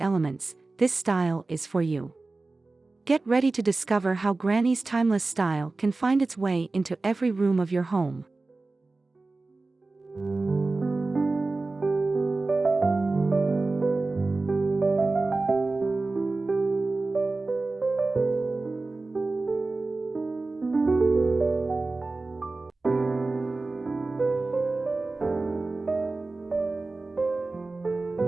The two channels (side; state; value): left; quieter; 3.4 dB